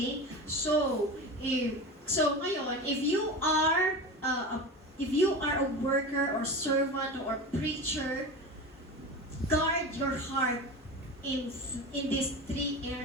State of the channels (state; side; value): normal; both; correlation 0.28